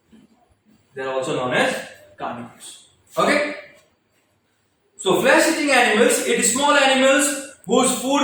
they are also known as carnivores okay so flesh eating animals it is small animals whose food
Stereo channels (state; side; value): identical; both; correlation 1.00